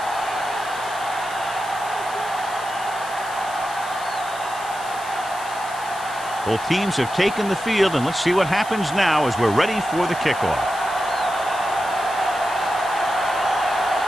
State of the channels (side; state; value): left; noise; hiss, 16 dB below the sound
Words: Both teams have taken the field, and let's see what happens now as we're ready for the kickoff.